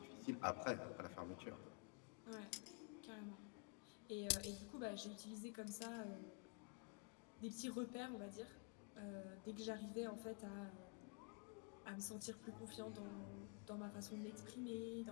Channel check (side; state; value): right; quieter; 33.4 dB